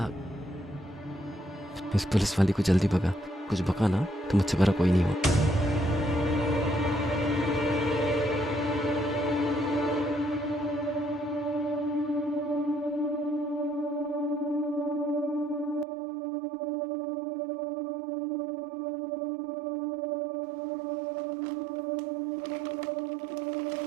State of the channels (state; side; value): drops out; left; at 15.9 s